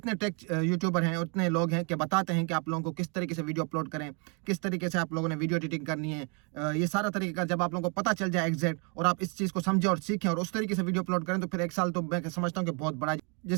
टेक यूट्यूबर हैं और इतने लोग हैं कि बताते हैं कि आप लोगों को किस तरीके से वीडियो अपलोड करें, किस तरीके से आप लोगों ने वीडियो एडिटिंग करनी है। ये सारा तरीका जब आप लोगों को पता चल जाए एग्जैक्ट और आप इस चीज़ को समझें और सीखें और उस तरीके से वीडियो अपलोड करें, तो फिर 1 साल तो मैं समझता हूँ कि बहुत बड़ा।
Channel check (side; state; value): left; quieter; 35.4 dB